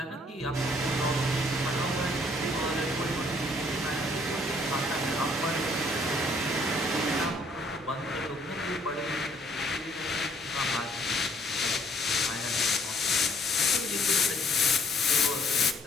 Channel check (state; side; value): normal; both; correlation 0.62